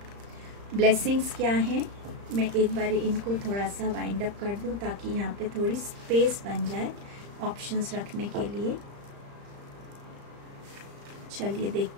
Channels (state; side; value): late; left; 35 ms